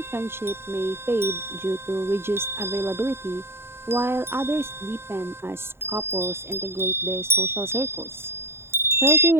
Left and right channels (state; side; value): late; left; 0.12 ms